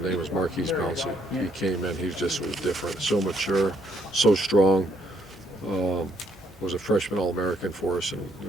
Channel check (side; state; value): both; normal; correlation 0.71